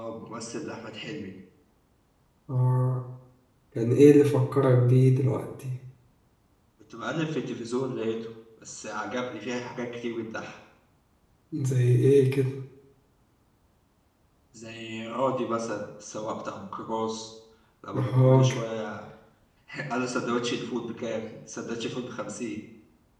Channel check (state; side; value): identical; both; correlation 1.00